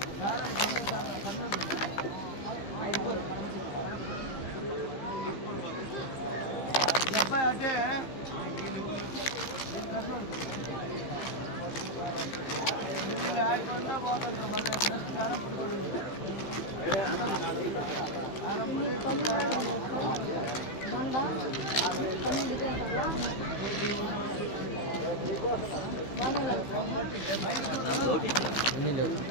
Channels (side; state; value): right; late; 15 ms